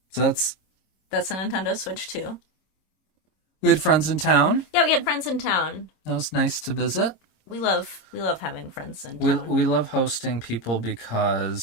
So that's a Nintendo Switch too. we had friends in town. Yeah, we had friends in town. That was nice to visit. We love having friends in We town. we love hosting people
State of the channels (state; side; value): late; right; 27 ms